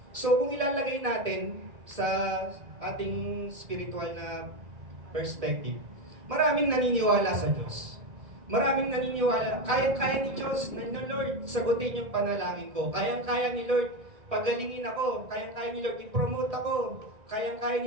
So kung ilalagay natin sa ating spiritual na perspective, maraming naniniwala sa Diyos. Maraming naniniwala, kaya-kaya ni Diyos, na Lord, sagutin yung panalangin ko. Kaya-kaya ni Lord, pagalingin ako. Kaya-kaya ni Lord, i-promote ako. Kaya-kaya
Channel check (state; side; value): late; left; 1.7 ms